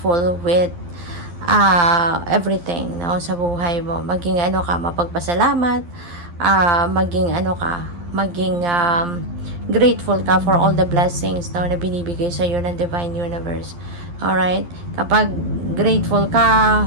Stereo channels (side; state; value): left; late; 12 ms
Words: with everything, no, sa buhay mo. Maging mapagpasalamat, maging grateful ka for all the blessings, no, na binibigay sa iyo ng Divine Universe. Alright? Kapag grateful ka,